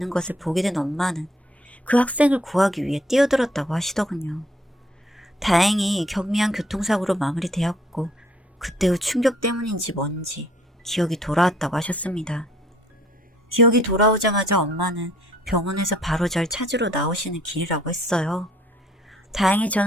것을 보게 된 엄마는 그 학생을 구하기 위해 뛰어들었다고 하시더군요. 다행히 경미한 교통사고로 마무리되었고 그때 후 충격 때문인지 뭔지 기억이 돌아왔다고 하셨습니다. 기억이 돌아오자마자 엄마는 병원에서 바로 절 찾으러 나오시는 길이라고 했어요. 다행히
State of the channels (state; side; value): normal; both; correlation 0.61